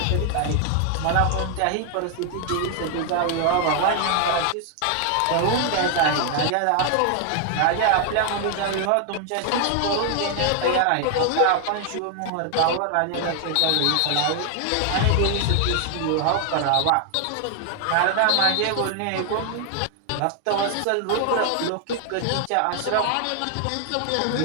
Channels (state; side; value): different; both; correlation 0.00